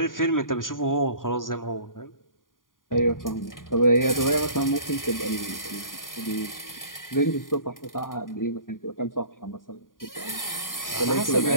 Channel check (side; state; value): right; late; 0.90 ms